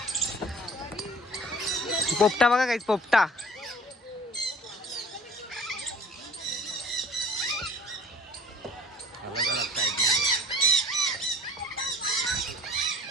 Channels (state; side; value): normal; both; correlation 0.50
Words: पोपटा बघा काहीच पोपटा.